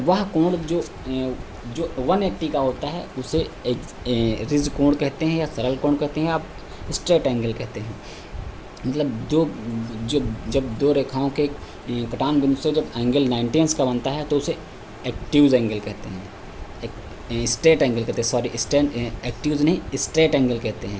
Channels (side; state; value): both; identical; correlation 1.00